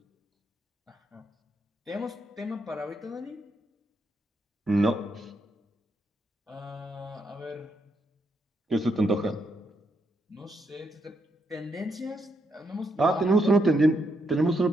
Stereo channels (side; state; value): both; normal; correlation 0.78